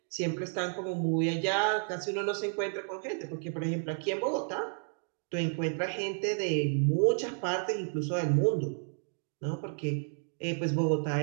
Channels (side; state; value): left; silent; 57 dB below the other